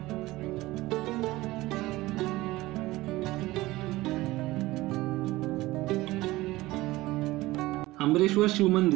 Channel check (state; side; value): quieter; left; 18.7 dB